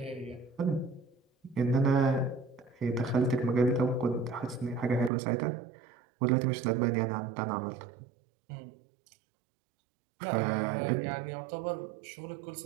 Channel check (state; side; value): drops out; left; at 5.1 s